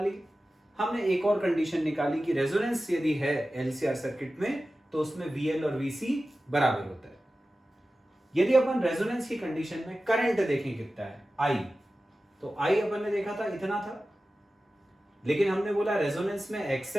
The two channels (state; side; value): normal; both; correlation 0.95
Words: ली। हमने एक और कंडीशन निकाली कि रेजोनेंस यदि है एलसीआर सर्किट में तो उसमें वीएल और वीसी बराबर होता है। यदि अपन रेजोनेंस की कंडीशन में करंट देखें कितना है, आई, तो आई अपन ने देखा था इतना था, लेकिन हमने बोला रेजोनेंस में